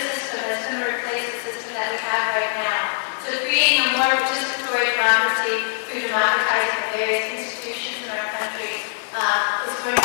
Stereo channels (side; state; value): right; silent; digital silence